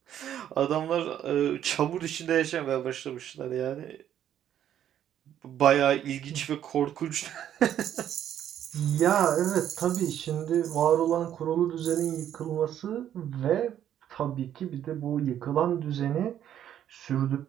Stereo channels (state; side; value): quieter; left; 10.5 dB